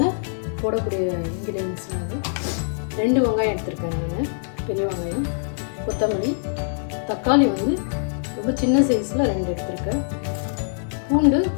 போடக்கூடிய இன்க்ரீடியன்ஸ்லாம் வந்து 2 வெங்காயம் எடுத்துருக்கேன் நான், பெரிய வெங்காயம், கொத்தமல்லி, தக்காளி வந்து ரொம்ப சின்ன சைஸில் 2 எடுத்துருக்கேன்.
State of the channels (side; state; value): right; silent; digital silence